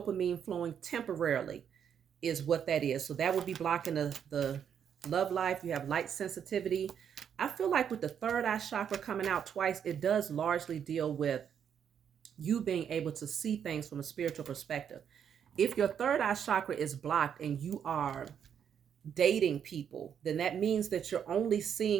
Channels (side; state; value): left; quieter; 8.3 dB